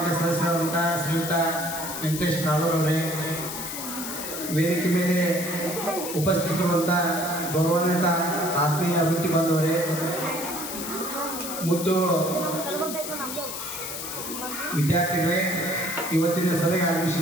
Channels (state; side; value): noise; left; hiss, 6 dB below the sound